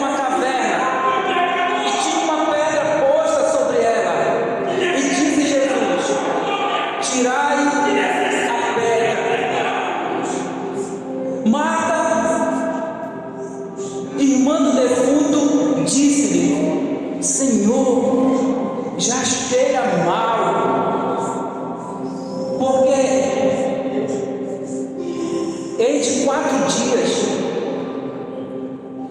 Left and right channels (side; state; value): both; identical; correlation 1.00